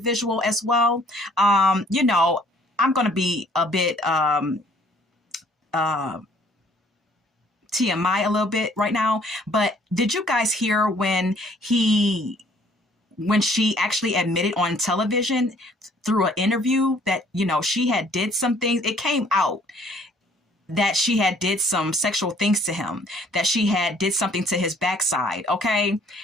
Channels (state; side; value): normal; both; correlation 0.60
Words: as well. I'm going to be a bit uh, TMI a little bit right now, but did you guys hear when she actually admitted on television through an interview that, you know, she had did some things? It came out that she had did some sexual things to him, that she had did something to his backside, okay?